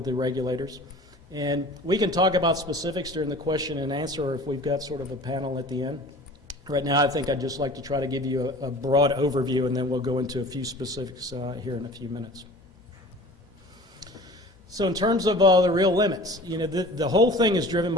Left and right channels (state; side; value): normal; both; correlation 0.43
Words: the regulators. And we can talk about specifics during the question and answer, or if we've got sort of a panel at the end. Right now, I think I'd just like to try to give you a broad overview, and then we'll go into a few specifics here in a few minutes. So in terms of the real limits, the whole thing is driven